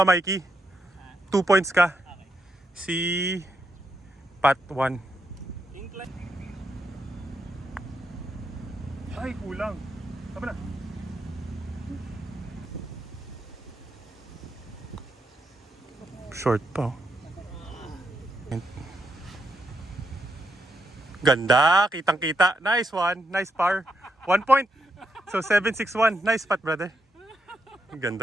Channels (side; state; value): both; normal; correlation 0.81